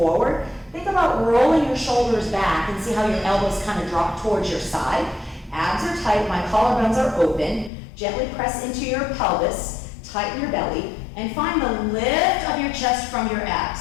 Think about rolling your shoulders back and see how your elbows kind of drop towards your side. Abs are tight, my collarbones are open. Gently press into your pelvis, tighten your belly, and find the lift of your chest from your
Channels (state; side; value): drops out; right; at 7.7 s